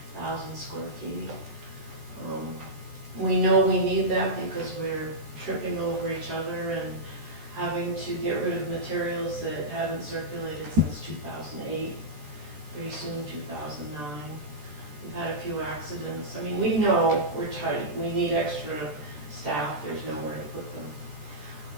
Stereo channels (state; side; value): late; left; 14 ms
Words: square feet. We know we need that because we're tripping over each other and having to get rid of materials that haven't circulated since 2008. pretty soon 2009. We've had a few accidents. I mean, we know we're tight, we need extra staff, there's nowhere to put